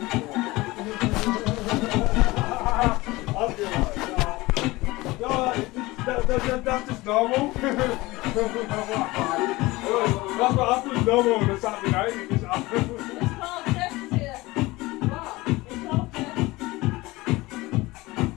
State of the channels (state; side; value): quieter; right; 20.7 dB